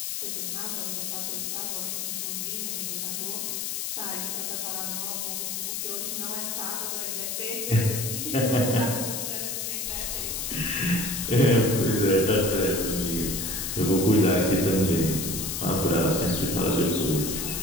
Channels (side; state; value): left; noise; hiss, 3 dB below the sound